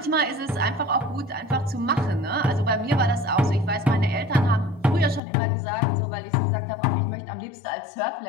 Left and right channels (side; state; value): right; drops out; at 5.2 s